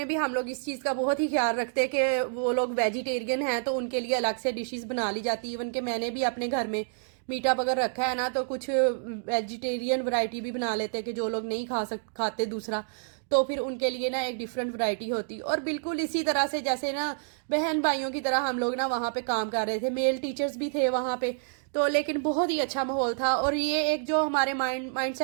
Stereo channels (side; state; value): left; silent; digital silence